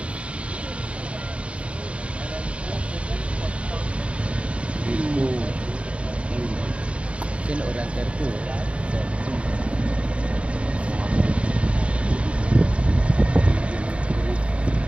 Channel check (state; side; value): late; left; 0.060 ms